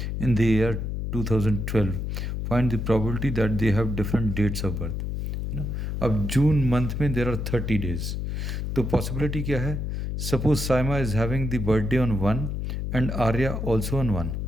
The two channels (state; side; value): noise; left; hum, 3 dB below the sound